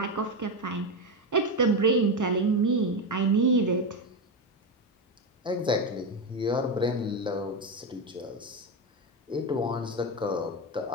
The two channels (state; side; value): normal; both; correlation 0.12